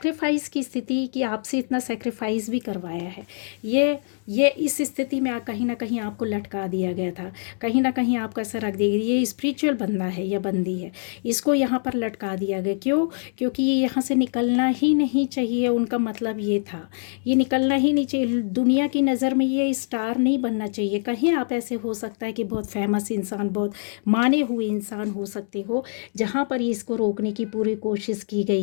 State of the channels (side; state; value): right; silent; digital silence